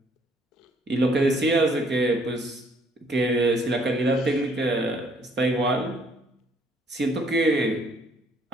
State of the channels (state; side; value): normal; both; correlation 0.64